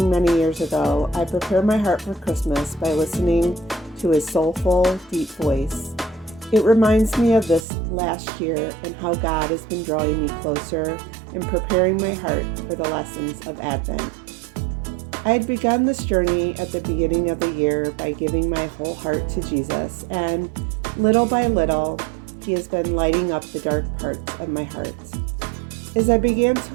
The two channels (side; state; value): left; drops out; at 7.7 s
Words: many years ago, I prepare my heart for Christmas by listening to his soulful, deep voice. It reminds me of this last year and how God has been drawing me closer and preparing my heart for the lessons of Advent. I had begun this journey at the beginning of the year by giving my whole heart to Jesus, and little by little, He has been lighting up the dark parts of my heart. As I began